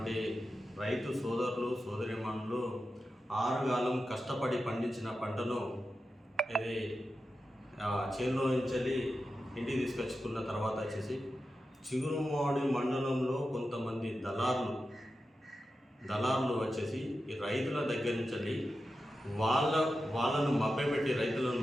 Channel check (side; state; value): both; normal; correlation 0.91